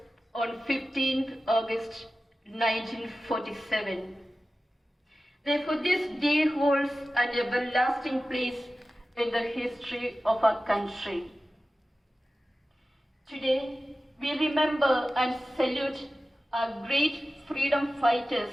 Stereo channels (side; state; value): both; normal; correlation 0.95